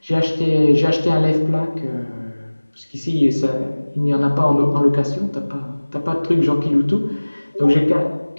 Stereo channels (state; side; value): inverted; both; correlation -1.00